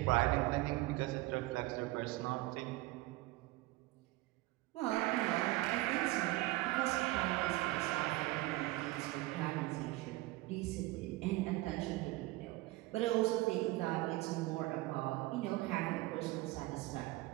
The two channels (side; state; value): left; quieter; 19.4 dB